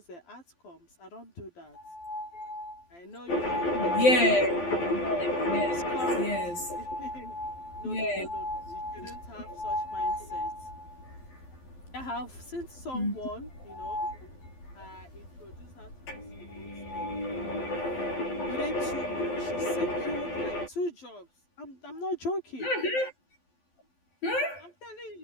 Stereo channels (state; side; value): late; right; 12 ms